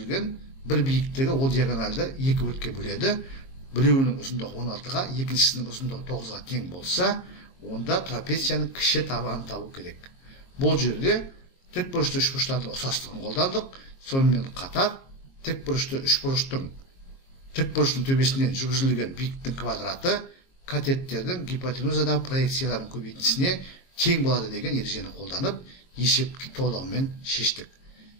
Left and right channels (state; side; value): late; right; 22 ms